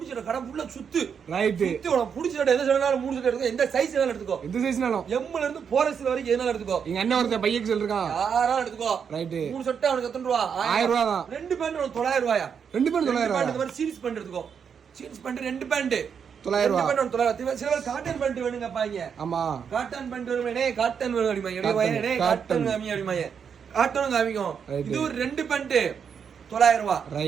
கடை ஃபுல்லா சுத்து. ரைட். சுத்தி உனக்கு பிடிச்ச செட் எந்த செட்டாலும் 3 செட் எடுத்துக்கோ. எந்த சைஸ்னாலும் எடுத்துக்கோ. எந்த சைஸ்னாலும். M ல இருந்து 4S வரைக்கும் எதனால எடுத்துக்கோ. எங்க அண்ணன் ஒருத்தன் பையக்கு சொல்றான். யாராலும் எடுத்துக்கோ. ரைட். 3 செட்டா உனக்கு எத்தனை ரூபாய்? 1000 ரூபாய் தான். 2 பேண்ட் உனக்கு 900 ரூபாயா? 2 பேண்ட் 900 ரூபாய். இந்த மாதிரி சீரிஸ் பேண்ட் எடுத்துக்கோ. சீரிஸ் பேண்ட் 2 பேண்ட் 900 ரூபாய். சில பேர் காட்டன் பேண்ட் வேணுங்க பாங்க. ஆமா காட்டன் பேண்ட் வேணுமே. காட்டன் வேணும் அப்படிமாங்க. காட்டன் காமி அப்படிமாங்க. காட்டனும் காமிக்கும். இது ஒரு 2 பேண்ட் 900 ரூபாய்.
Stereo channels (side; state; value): left; quieter; 7.0 dB